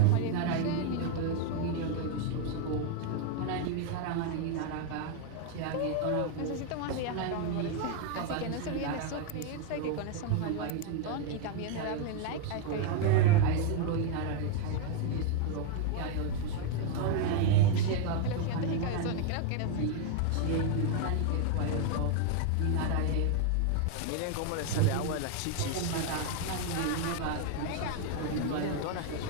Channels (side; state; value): both; different; correlation 0.01